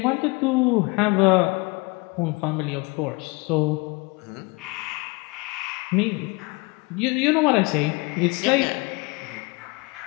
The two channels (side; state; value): right; quieter; 27.1 dB